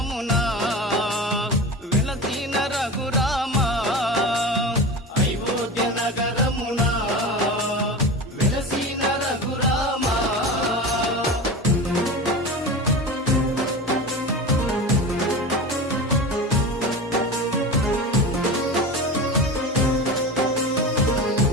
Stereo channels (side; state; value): both; normal; correlation 0.28